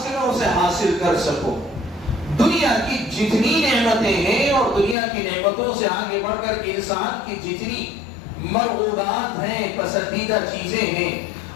کہ میں اسے حاصل کر سکوں۔ دنیا کی جتنی نعمتیں ہیں اور دنیا کی نعمتوں سے آگے بڑھ کر انسان کی جتنی مرغوبات ہیں، پسندیدہ چیزیں ہیں،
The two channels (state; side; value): drops out; right; at 5.0 s